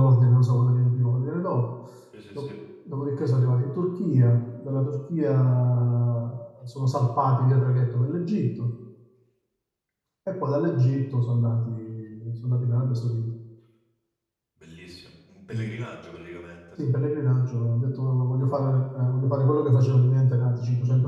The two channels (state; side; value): identical; both; correlation 1.00